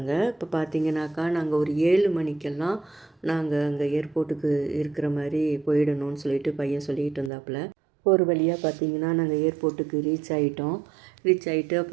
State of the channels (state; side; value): drops out; left; at 7.3 s